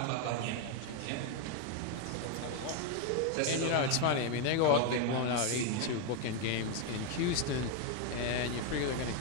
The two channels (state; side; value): different; both; correlation 0.01